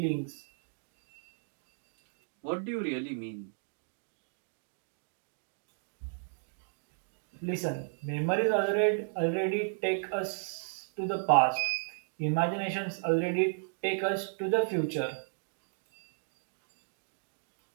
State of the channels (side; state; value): left; silent; digital silence